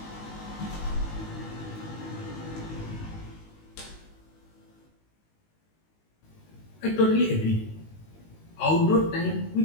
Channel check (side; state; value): right; late; 19 ms